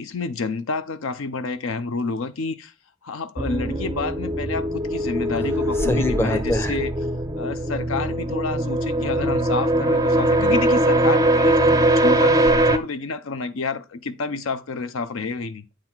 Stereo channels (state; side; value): normal; both; correlation 0.43